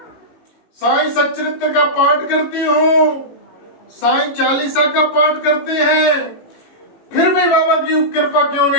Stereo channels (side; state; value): right; late; 18 ms